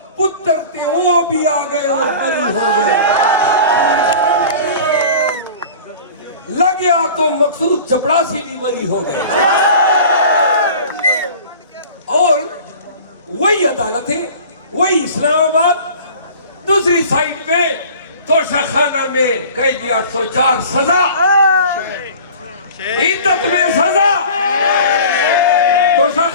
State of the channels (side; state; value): both; inverted; correlation -0.41